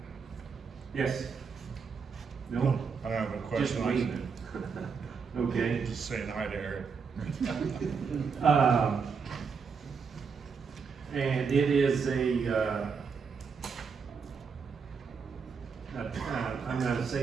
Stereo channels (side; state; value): left; quieter; 5.7 dB